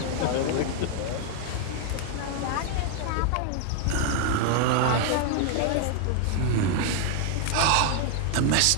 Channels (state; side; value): different; both; correlation 0.00